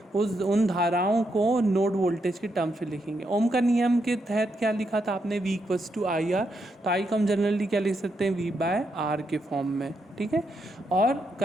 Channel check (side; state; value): both; normal; correlation 0.80